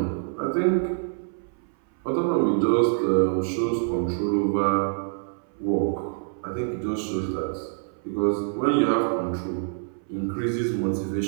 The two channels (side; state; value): left; silent; 59 dB below the other